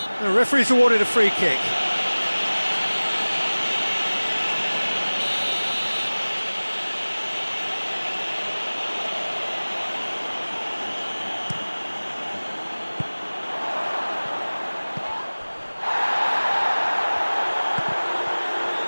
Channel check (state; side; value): inverted; both; correlation -1.00